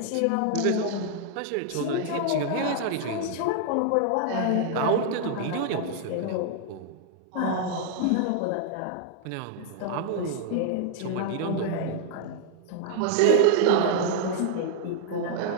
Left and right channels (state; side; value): different; both; correlation 0.00